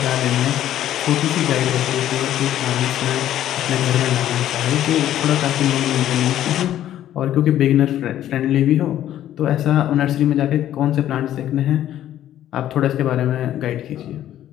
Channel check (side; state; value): right; quieter; 12.0 dB